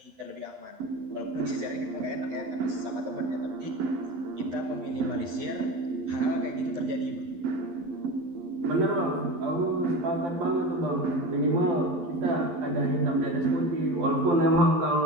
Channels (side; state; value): left; late; 12 ms